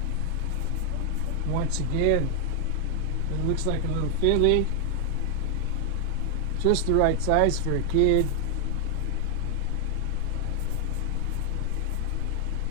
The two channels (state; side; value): different; both; correlation 0.00